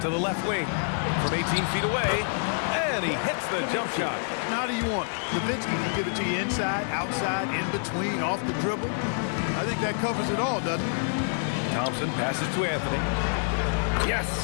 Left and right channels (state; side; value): silent; right; digital silence